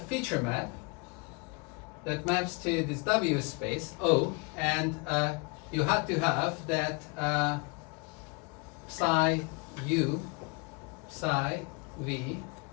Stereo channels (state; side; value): quieter; right; 31.4 dB